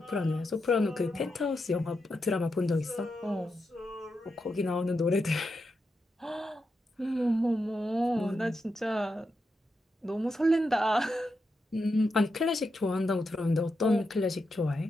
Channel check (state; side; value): normal; both; correlation 0.86